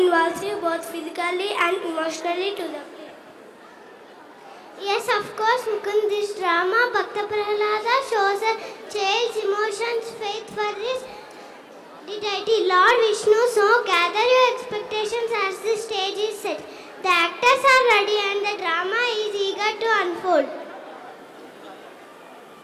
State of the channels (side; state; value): both; identical; correlation 1.00